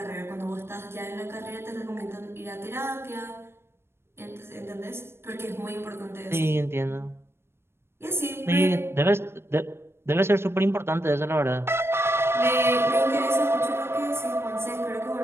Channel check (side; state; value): left; late; 0.12 ms